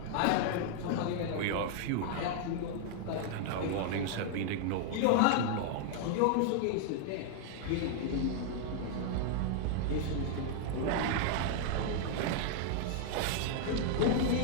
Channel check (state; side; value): different; both; correlation 0.00